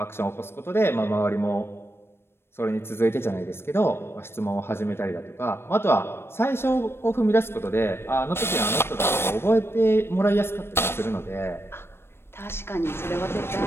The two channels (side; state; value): right; late; 0.12 ms